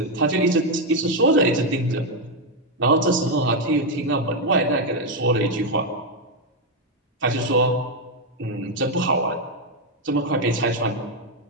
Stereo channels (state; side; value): normal; both; correlation 0.03